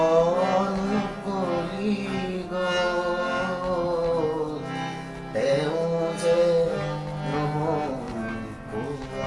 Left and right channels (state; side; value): identical; both; correlation 1.00